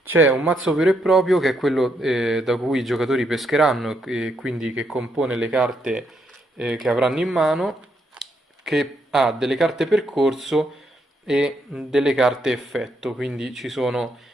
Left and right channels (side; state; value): both; normal; correlation 0.77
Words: C'è un mazzo vero e proprio che è quello da cui i giocatori pescheranno e quindi che compone le carte che avranno in mano, che ha delle carte percorso e delle carte effetto, quindi ci sono